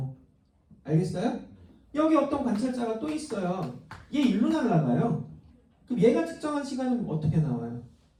알겠어요? 여기 어떤 관찰자가 또 있어요. 얘 일로 날아가요. 그럼 얘가 측정한 시간은 어떻게 나와요?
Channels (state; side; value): identical; both; correlation 1.00